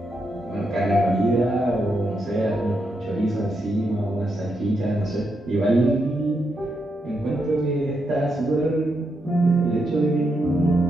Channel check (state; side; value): normal; both; correlation 0.82